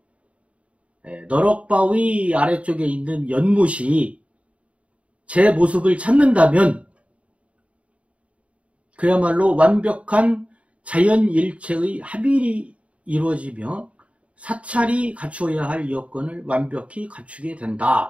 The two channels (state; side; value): late; left; 0.064 ms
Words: 너럭바위 아래쪽에 있는 연못이 제 모습을 찾는다면 그야말로 완벽한 자연일체의 합일이 이루어지며 사찰이 갖추어야 할 여건을 완벽히 갖추게